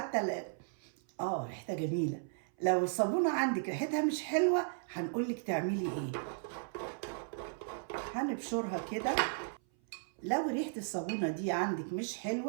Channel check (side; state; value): left; silent; 54 dB below the other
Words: ريحتها جميله. لو الصابونه عندك ريحتها مش حلوه هنقولك تعملي ايه. هنبشرها كده. لو ريحه الصابونه دي عندك مش